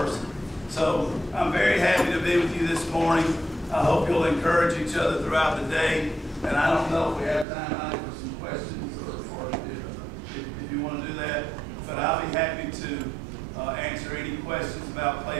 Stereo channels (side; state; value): left; drops out; at 7.5 s